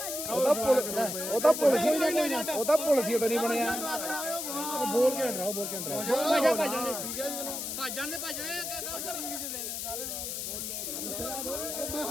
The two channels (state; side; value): noise; left; hiss, 4 dB below the sound